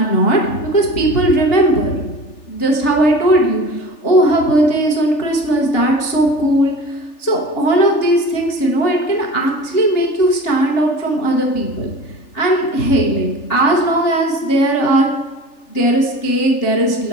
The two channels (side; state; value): right; late; 3.4 ms